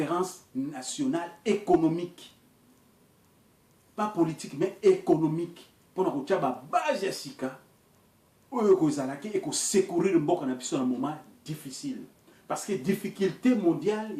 nationale économique. Pas politique, mais économique. Pour nous dire que base sika, et secourir le monde dans un moment difficile. Parce que difficulté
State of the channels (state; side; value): identical; both; correlation 1.00